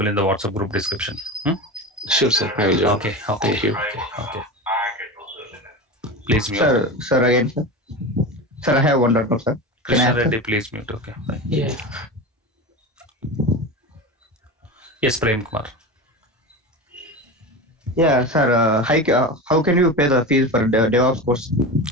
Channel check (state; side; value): normal; both; correlation 0.26